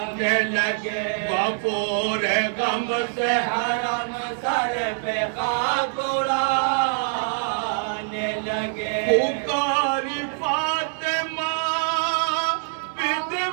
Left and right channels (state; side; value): silent; left; 60 dB below the other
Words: लगे। वो पूरे गम से हरम सर पे खाक उड़ाने लगे। पुकारी फातिमा बिद